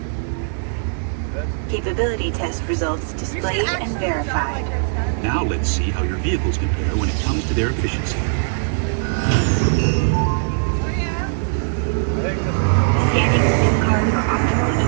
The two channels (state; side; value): silent; left; 66 dB below the other